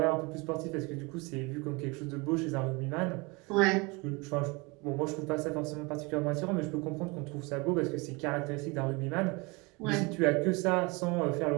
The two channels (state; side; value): quieter; left; 26.9 dB